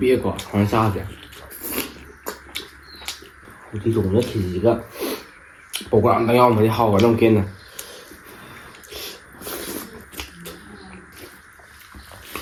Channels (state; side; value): identical; both; correlation 1.00